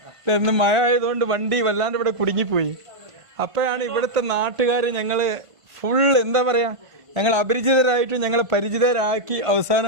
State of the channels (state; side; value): late; left; 1.5 ms